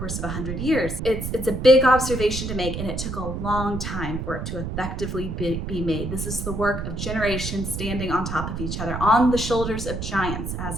of 100 years. It's a big observation to make, and it took a long time for it to effectively be made. This is the work of generations standing on top of each other, on the shoulders of giants,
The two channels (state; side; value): noise; right; rumble, 5 dB below the sound